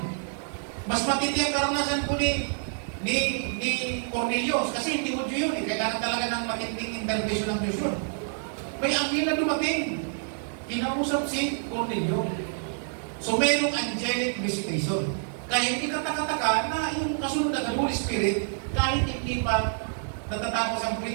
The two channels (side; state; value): left; silent; digital silence